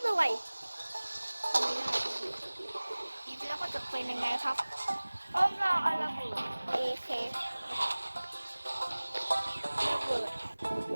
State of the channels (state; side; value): inverted; both; correlation -1.00